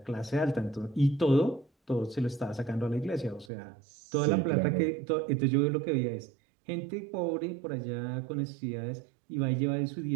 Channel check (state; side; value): drops out; left; at 3.5 s